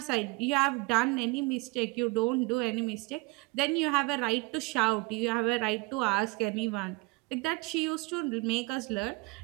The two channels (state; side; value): quieter; left; 25.2 dB